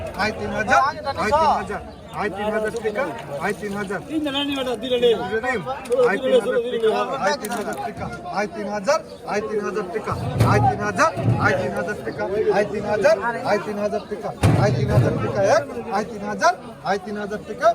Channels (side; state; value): both; identical; correlation 1.00